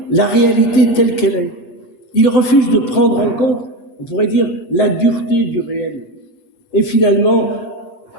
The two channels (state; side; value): late; right; 7.8 ms